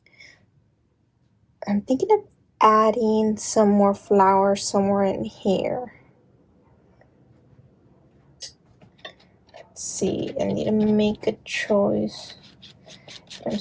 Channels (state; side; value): identical; both; correlation 1.00